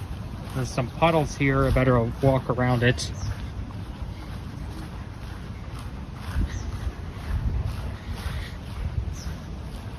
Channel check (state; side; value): identical; both; correlation 1.00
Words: There's some puddles here. I better walk around it.